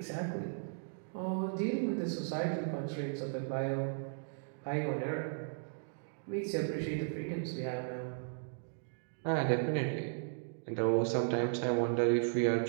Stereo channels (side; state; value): left; silent; digital silence